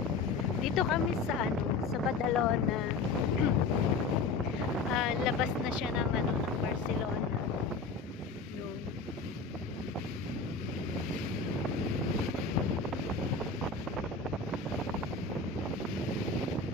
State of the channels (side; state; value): right; quieter; 4.1 dB